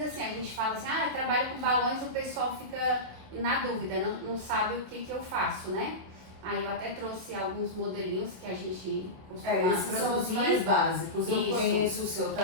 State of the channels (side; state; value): left; late; 27 ms